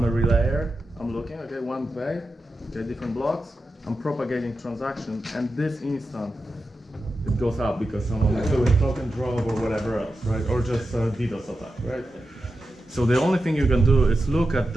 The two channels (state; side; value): normal; both; correlation 0.90